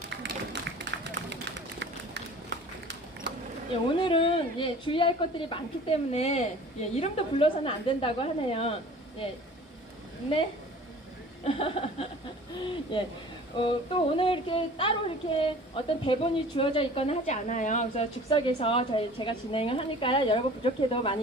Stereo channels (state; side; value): normal; both; correlation 0.45